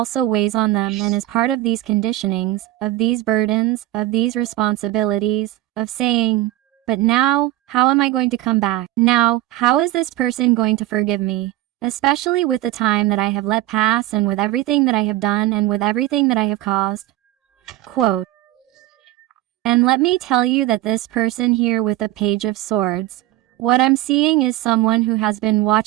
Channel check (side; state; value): left; quieter; 15.8 dB